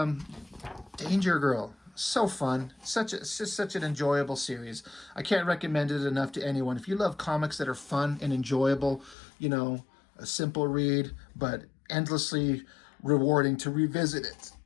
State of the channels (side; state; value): right; drops out; at 9.2 s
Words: Danger Girl, so fun. It's just such an enjoyable series. I can't recommend it enough to anyone. If you love comics that are fun and enjoyable, you know, a simple read, but endlessly rewarding to revisit it